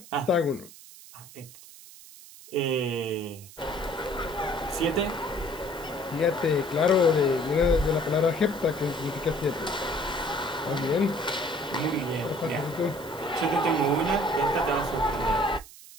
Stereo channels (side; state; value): right; noise; hiss, 19 dB below the sound